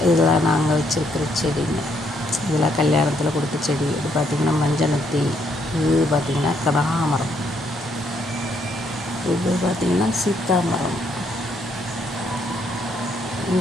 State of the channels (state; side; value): normal; both; correlation 0.72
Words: இதெல்லாம் நாங்கள் வச்சுருக்கிற செடிங்க. இதெல்லாம் கல்யாணத்தில் கொடுத்த செடி. இது பார்த்திங்கன்னா மஞ்சனத்தி, இது பார்த்திங்கன்னா கனகாமரம், இது பார்த்திங்கன்னா சீத்தாமரம்.